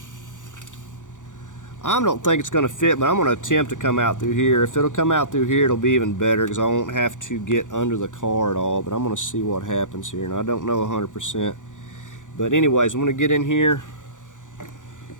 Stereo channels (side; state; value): right; late; 0.87 ms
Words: don't think it's going to fit, but I'm going to attempt to come out through here. If it'll come out through here, it'll be even better because I won't have to get under the car at all. But I'm going to see what happens here, and I don't know 100%. But anyways, I'm going to get in here,